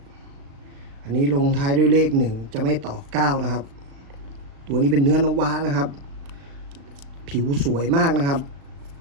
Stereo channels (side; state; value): left; late; 36 ms